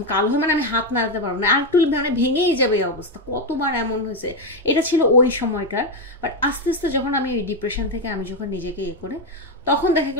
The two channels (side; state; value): both; normal; correlation 0.07